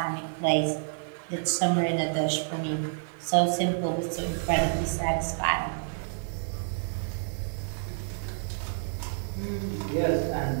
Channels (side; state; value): left; silent; 59 dB below the other